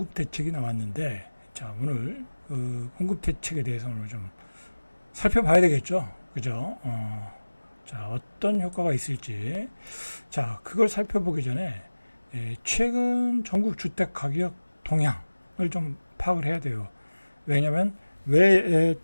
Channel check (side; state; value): both; inverted; correlation -1.00